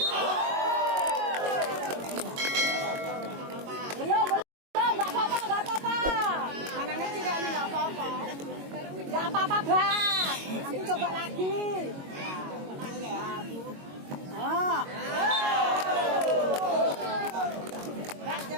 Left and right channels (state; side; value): late; left; 22 ms